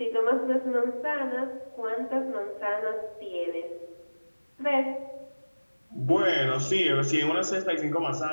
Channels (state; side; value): inverted; both; correlation -1.00